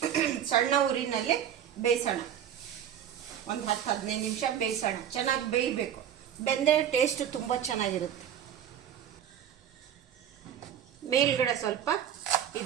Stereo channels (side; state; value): left; quieter; 9.7 dB